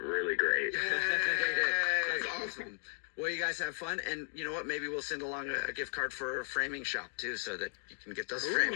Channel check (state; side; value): silent; right; 54 dB below the other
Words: great. That's awesome. Well, you guys have fun, and you know what? Maybe we'll send along a gift card for a framing shop, too, so that you can get those framed.